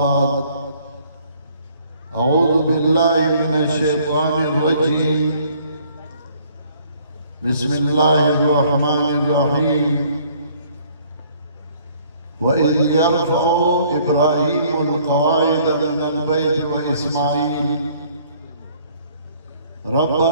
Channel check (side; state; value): both; inverted; correlation -0.59